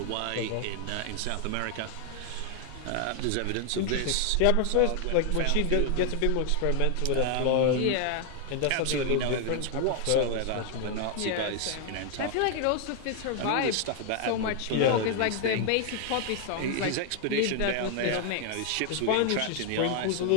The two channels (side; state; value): both; different; correlation 0.00